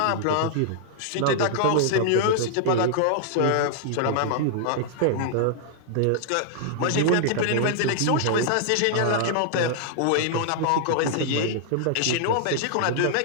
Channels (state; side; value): different; both; correlation -0.01